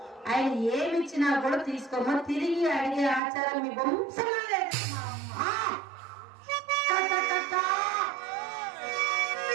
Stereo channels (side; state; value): left; drops out; at 3.2 s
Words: ఆయన ఏమిచ్చినా కూడా తీసుకోమని తిరిగి అడిగే ఆచారం మీ వంశంలో లేదు.